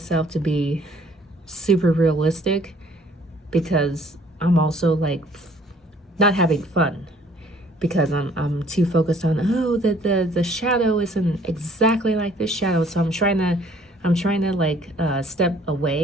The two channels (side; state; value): both; normal; correlation 0.58